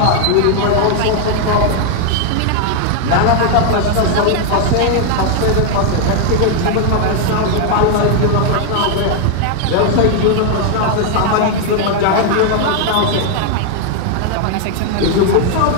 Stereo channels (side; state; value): both; different; correlation 0.00